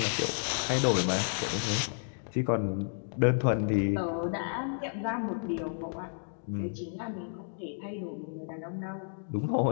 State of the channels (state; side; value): silent; right; digital silence